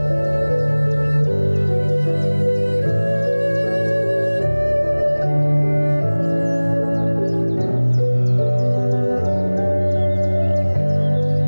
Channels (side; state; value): both; inverted; correlation -1.00